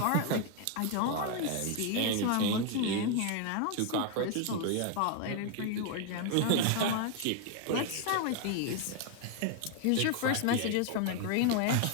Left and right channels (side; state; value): both; different; correlation 0.01